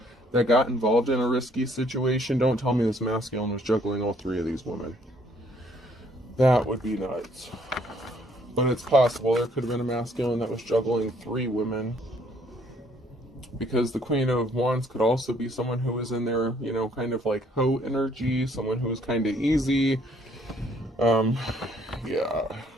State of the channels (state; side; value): normal; both; correlation 0.64